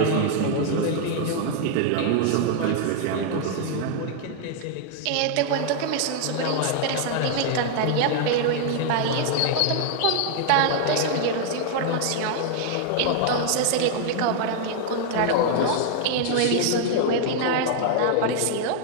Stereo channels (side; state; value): both; different; correlation 0.00